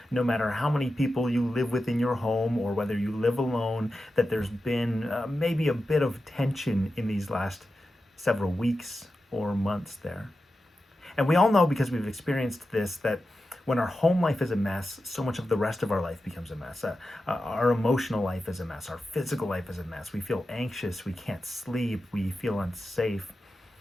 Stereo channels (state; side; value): normal; both; correlation 0.91